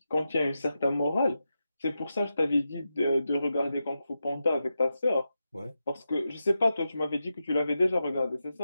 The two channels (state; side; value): inverted; both; correlation -0.89